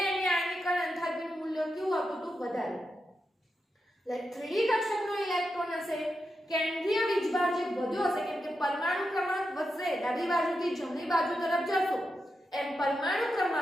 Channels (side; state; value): both; normal; correlation 0.87